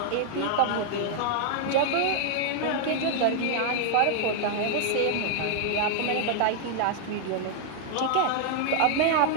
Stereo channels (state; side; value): different; both; correlation 0.00